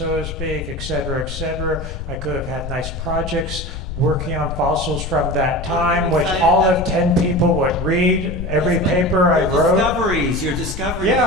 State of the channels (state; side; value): noise; left; rumble, 7 dB below the sound